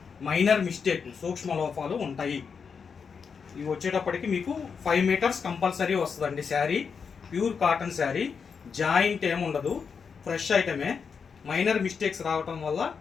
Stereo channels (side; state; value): right; quieter; 6.0 dB